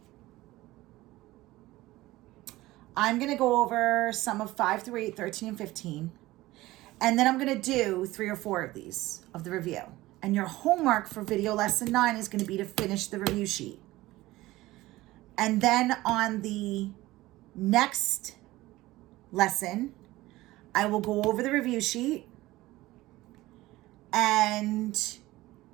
I'm going to go over some of 5 through 8, 13, and 15. And then I'm going to do 3 or 4 of these of the review. And your homework for video lesson 9 is going to be to finish the review sheet. And then on the next lesson, I will go over the review sheet and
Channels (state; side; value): quieter; left; 18.0 dB